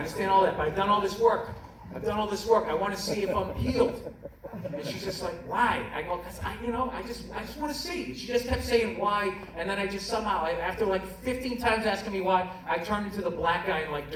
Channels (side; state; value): both; identical; correlation 1.00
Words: But I've done all this work. I want to see if I'm healed. And she's just like, why? I go, because I just want to see. She just kept saying why, and then I just somehow, after like 15 times asking me why, I turned into the black guy in like